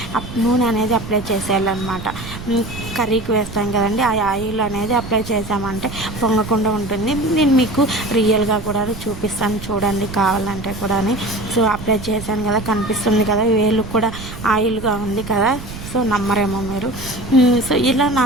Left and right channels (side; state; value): right; noise; rumble, 11 dB below the sound